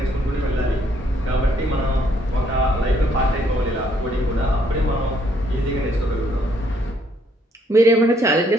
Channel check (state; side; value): normal; both; correlation 0.69